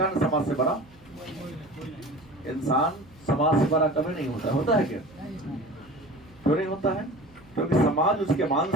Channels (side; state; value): right; noise; hum, 26 dB below the sound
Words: ना समाज से बड़ा इंसान समाज से बड़ा कभी नहीं होता। होता है क्या? क्यों नहीं होता है? क्योंकि समाज उसके मान